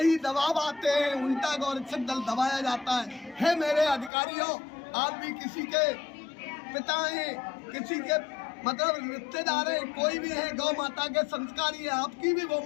ही दबाव आते हैं, उल्टा गौरक्षक दल दबाया जाता है। मेरे अधिकारियों, आप भी किसी के पिता हैं, किसी के मतलब रिश्तेदार हैं, कोई भी है, गौ माता के संस्कारी है, आपकी भी वो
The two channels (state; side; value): drops out; right; at 4.1 s